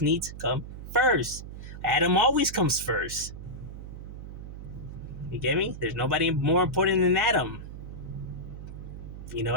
needs come first. Adam always comes first. You get me? There's nobody more important than Adam. You know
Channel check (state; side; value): noise; right; hum, 11 dB below the sound